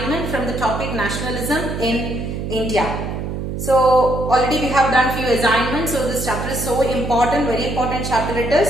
from the topic nationalism in India. So already we have done few assignments, so this chapter is so important, very important chapter it is.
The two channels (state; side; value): noise; right; hum, 5 dB below the sound